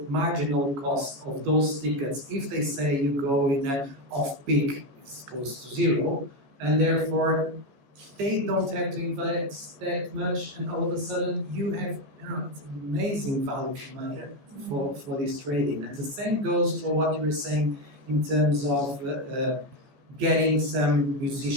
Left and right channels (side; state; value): left; late; 14 ms